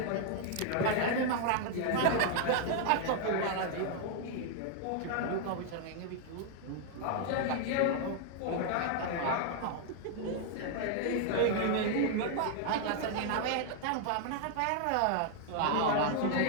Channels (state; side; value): different; both; correlation 0.00